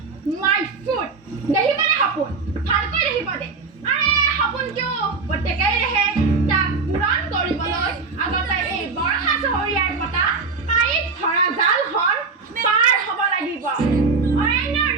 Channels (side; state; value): left; quieter; 4.6 dB